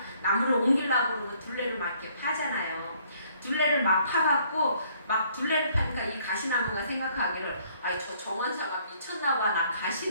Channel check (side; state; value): both; inverted; correlation -0.64